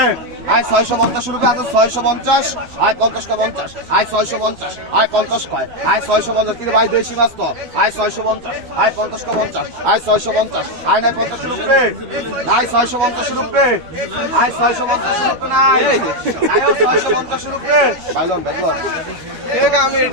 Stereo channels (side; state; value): left; late; 12 ms